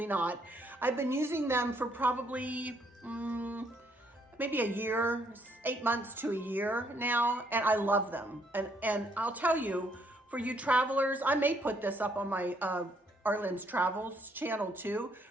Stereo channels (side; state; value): both; normal; correlation 0.70